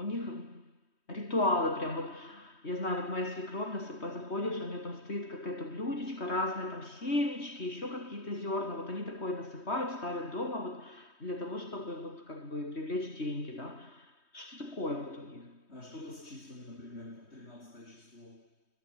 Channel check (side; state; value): right; late; 3.2 ms